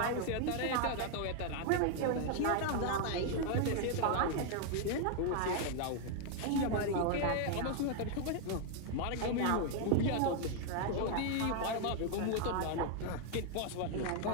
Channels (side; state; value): both; different; correlation 0.00